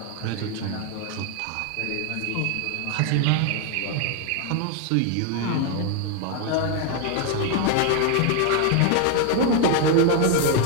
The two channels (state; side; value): different; both; correlation 0.01